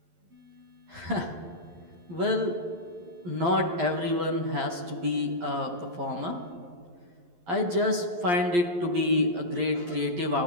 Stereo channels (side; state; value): left; late; 11 ms